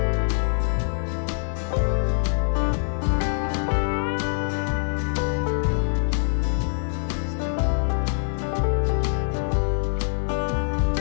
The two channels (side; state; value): right; silent; 62 dB below the other